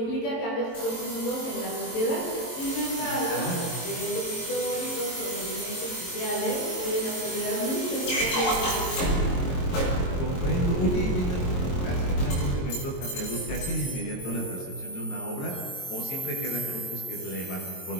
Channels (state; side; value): late; right; 22 ms